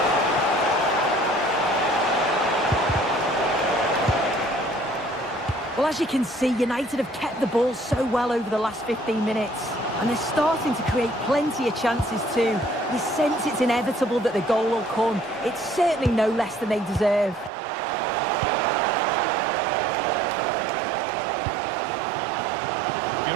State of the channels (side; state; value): left; drops out; at 17.5 s